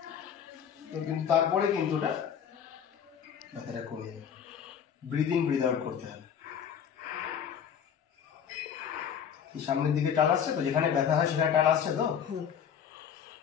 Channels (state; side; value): quieter; right; 8.1 dB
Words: কিন্তু তারপরে কিন্তু ওটা ব্যথাটা কমে যাবে। ব্রিদ ইন ব্রিদ আউট করতে হবে। সামনের দিকে টান আসছে তো, যেখানে ব্যথা হয় সেখানে টান আসছে তো।